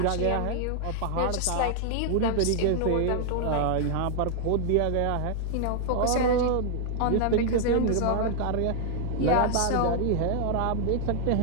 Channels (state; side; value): different; both; correlation 0.00